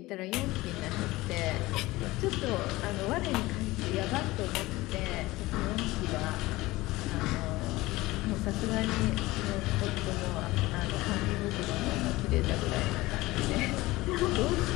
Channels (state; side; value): quieter; right; 19.5 dB